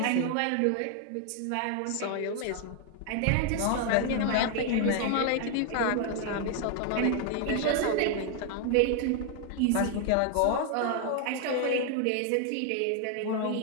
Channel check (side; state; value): both; different; correlation 0.00